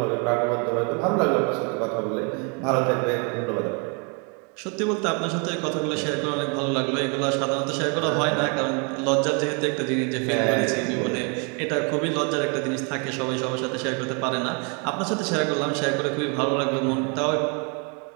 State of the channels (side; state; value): left; quieter; 35.4 dB